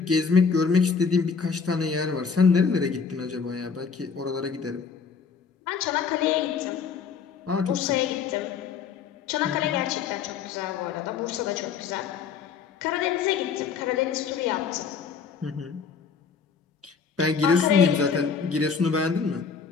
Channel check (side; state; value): right; quieter; 5.8 dB